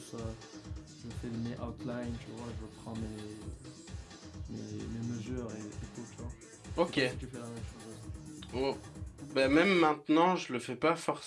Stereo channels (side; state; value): both; identical; correlation 1.00